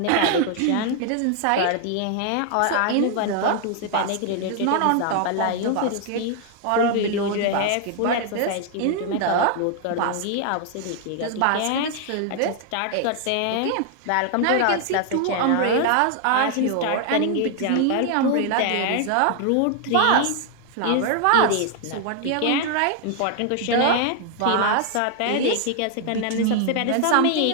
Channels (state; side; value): different; both; correlation 0.00